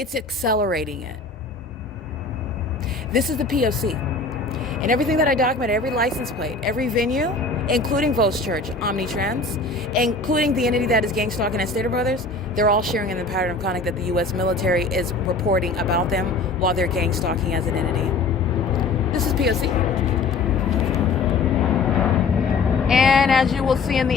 accelerating it. This is the P.O.C. And everything that I document, every license plate, every venue, including Vos Church, Omnitrans, including the entity that is gang stalking at Stater Brothers, they're all sharing in the pattern of conduct that the U.S. military is reporting about them while they're gang stalking as an entity. This is P.O.C. And as you will see in the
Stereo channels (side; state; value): right; quieter; 3.8 dB